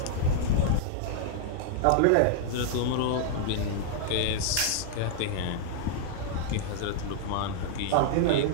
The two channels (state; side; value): different; both; correlation -0.01